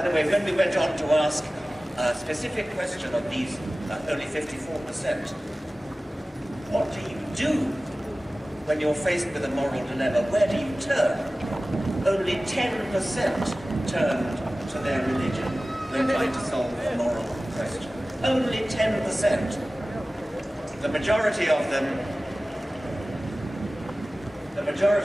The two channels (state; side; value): normal; both; correlation 0.97